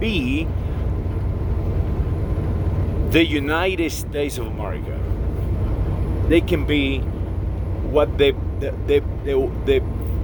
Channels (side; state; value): both; identical; correlation 1.00